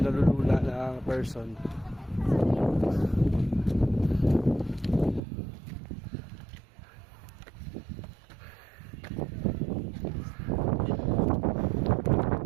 na ang person.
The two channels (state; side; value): drops out; left; at 5.2 s